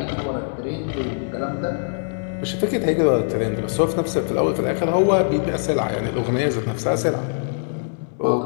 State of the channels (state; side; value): silent; right; 64 dB below the other